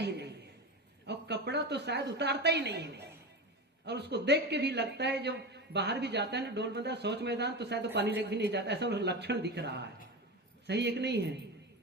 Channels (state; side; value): normal; both; correlation 0.23